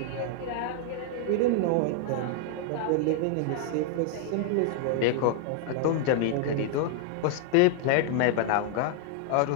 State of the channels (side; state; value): both; different; correlation 0.00